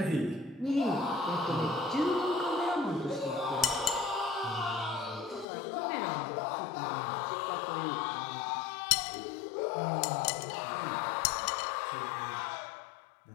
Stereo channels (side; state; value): right; drops out; at 5.5 s